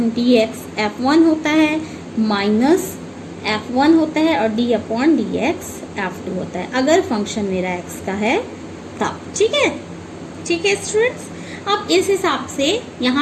D x f1 होता है, माइनस f1 होता है, और d upon D x f2 होता है, अगर फंक्शन मेरा x का है तब, ठीक है, ठीक है स्टूडेंट्स। अब इस हिसाब से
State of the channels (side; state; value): both; identical; correlation 1.00